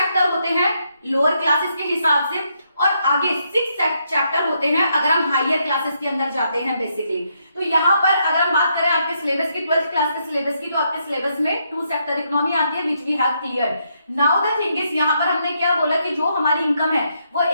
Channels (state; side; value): inverted; both; correlation -0.77